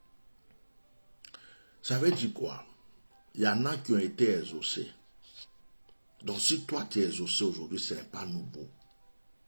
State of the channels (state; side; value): inverted; both; correlation -1.00